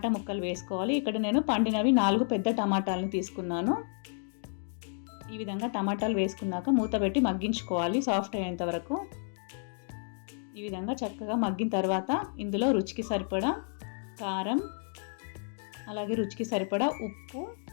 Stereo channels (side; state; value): right; silent; 57 dB below the other